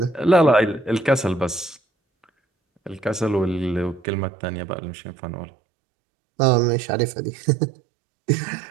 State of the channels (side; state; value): left; drops out; at 4.0 s